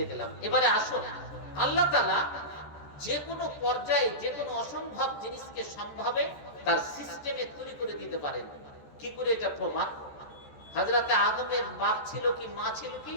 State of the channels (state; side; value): late; right; 14 ms